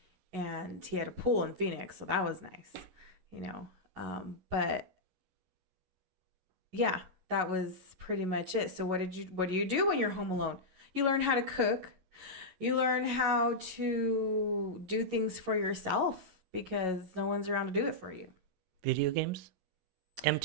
And he had a pool in Phoenix, so that was nice, you know. But yeah, that was pretty much it. So what do you do when you're home alone? You learn how to cook. You learn how to do things for yourself because no one's around to do it for you. Video games?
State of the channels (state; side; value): late; left; 11 ms